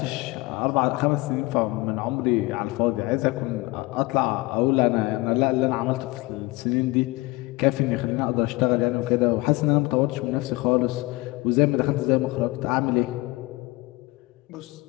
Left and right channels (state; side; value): quieter; right; 22.1 dB